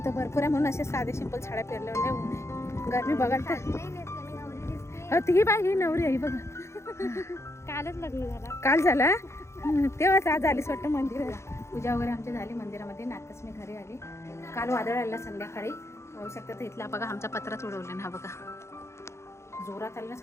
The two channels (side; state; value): right; late; 0.13 ms